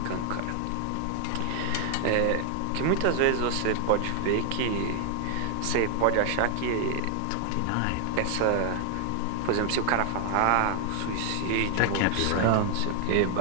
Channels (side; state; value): both; different; correlation 0.00